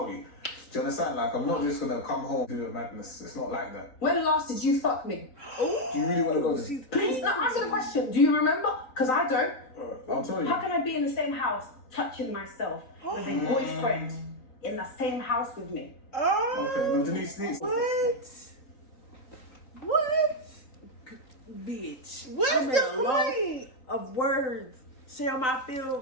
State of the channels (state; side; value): late; right; 3.9 ms